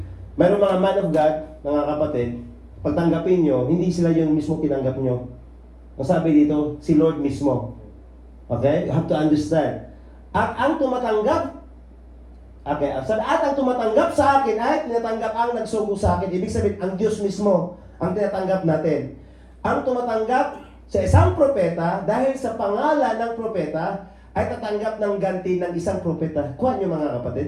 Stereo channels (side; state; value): both; identical; correlation 1.00